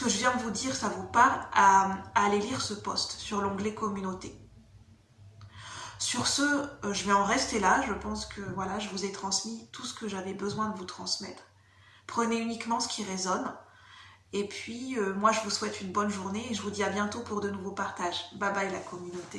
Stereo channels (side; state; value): both; identical; correlation 1.00